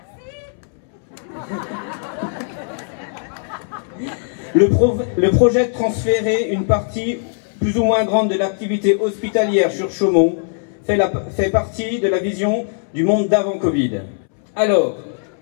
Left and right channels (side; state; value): right; silent; 66 dB below the other